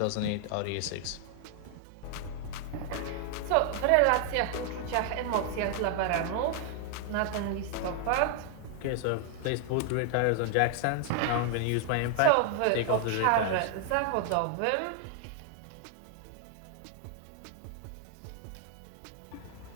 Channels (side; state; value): both; different; correlation 0.00